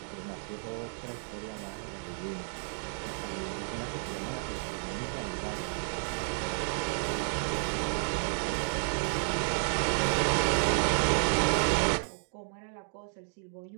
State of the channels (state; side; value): silent; left; digital silence